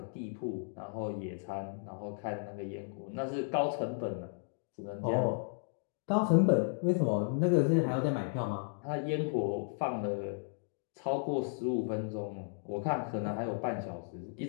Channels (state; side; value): silent; right; digital silence